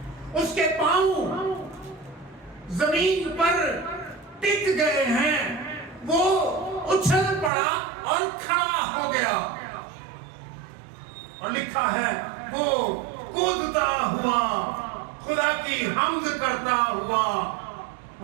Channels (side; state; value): left; drops out; at 7.5 s